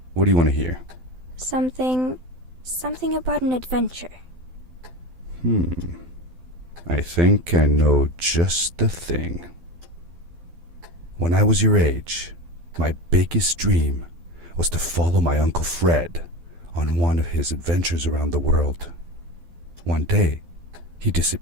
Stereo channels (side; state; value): left; late; 12 ms